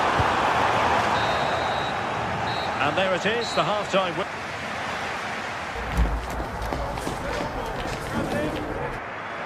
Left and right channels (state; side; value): identical; both; correlation 1.00